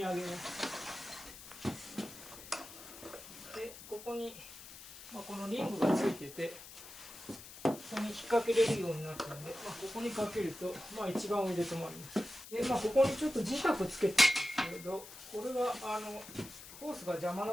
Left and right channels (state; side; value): noise; left; hiss, 15 dB below the sound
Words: 上げます。で、ここに、このリングがついてて、ここに引っ掛けれるようになったので、ここにかけると、一番上で止まります。で、ここにちょっと磁石つけてるんですけど、これはホースが邪魔